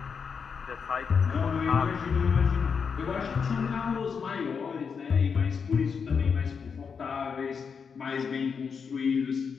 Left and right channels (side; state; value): right; quieter; 6.1 dB